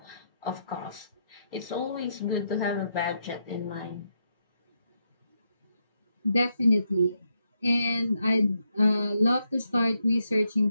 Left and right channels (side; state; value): both; inverted; correlation -0.80